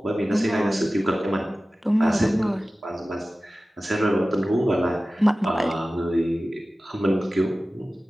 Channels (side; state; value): both; normal; correlation 0.96